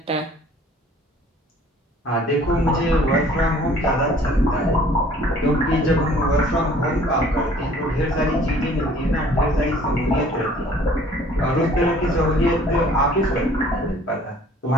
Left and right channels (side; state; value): both; normal; correlation 0.54